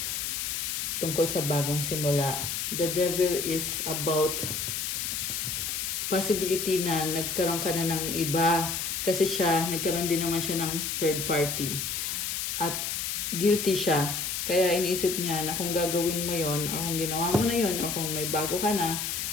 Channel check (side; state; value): left; noise; hiss, 2 dB below the sound